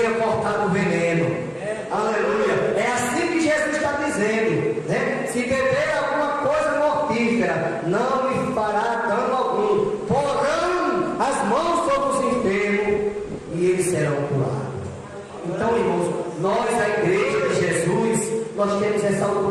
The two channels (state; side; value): identical; both; correlation 1.00